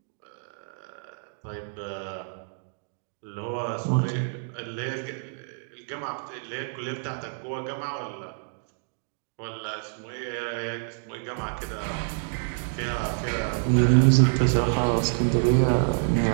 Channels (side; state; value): left; silent; digital silence